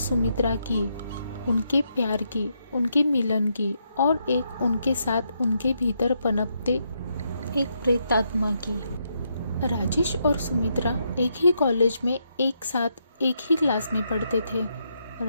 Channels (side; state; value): both; inverted; correlation -0.79